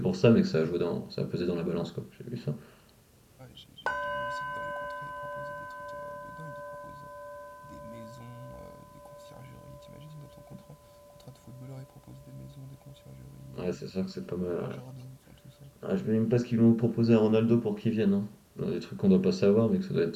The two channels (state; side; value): identical; both; correlation 1.00